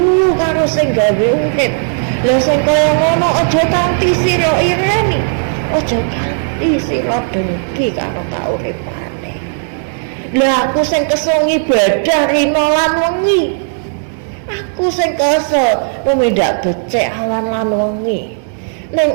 karo sing gawe urip. Lah sing kaya ngono aja kanthi sira ireni. Aja kanthi sira dengki karo kauripane. Lah aku sing kesel ibadah rina lan wengi. Aku sing kesel tumindak becik awan lan wengi. Ning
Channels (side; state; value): left; silent; digital silence